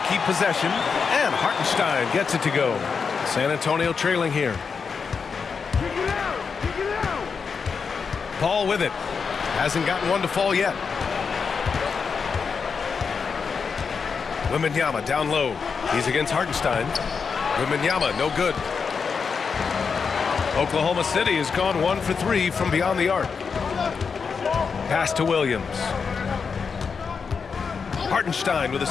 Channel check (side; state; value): right; quieter; 5.6 dB